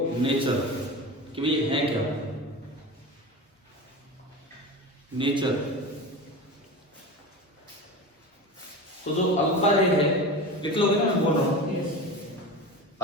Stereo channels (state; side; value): normal; both; correlation 0.28